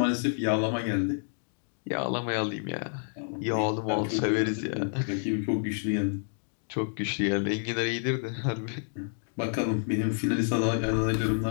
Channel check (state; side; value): silent; right; digital silence